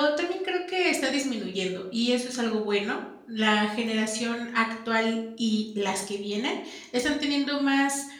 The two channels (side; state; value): both; identical; correlation 1.00